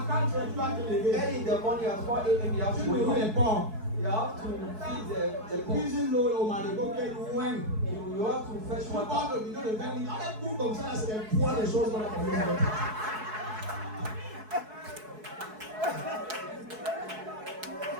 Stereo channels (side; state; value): left; late; 4.7 ms